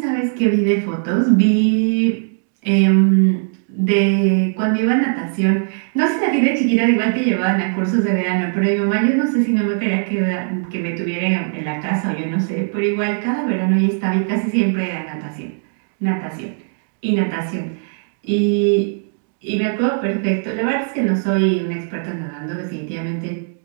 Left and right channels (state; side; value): silent; left; digital silence